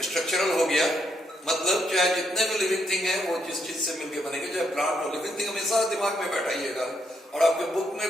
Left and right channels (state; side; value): normal; both; correlation 0.75